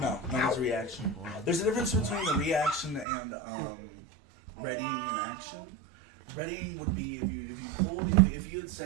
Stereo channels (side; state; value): left; drops out; at 3.1 s